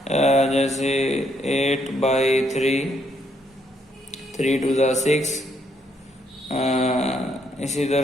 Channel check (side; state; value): both; normal; correlation 0.73